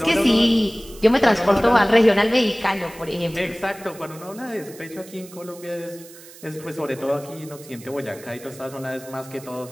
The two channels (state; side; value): noise; right; hiss, 19 dB below the sound